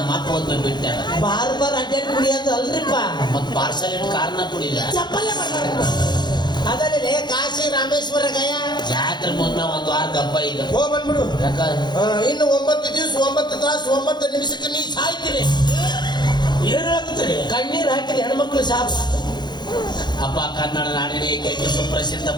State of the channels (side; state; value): right; late; 0.21 ms